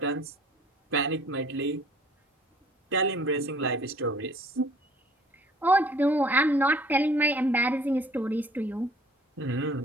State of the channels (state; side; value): normal; both; correlation 0.54